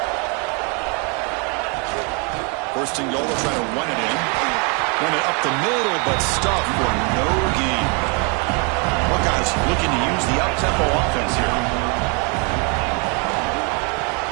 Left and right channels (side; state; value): left; quieter; 33.8 dB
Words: First and goal, they'll try to run it in. Run it up the middle, but stuffed for no gain. Buckeyes looking to use the up-tempo offense here.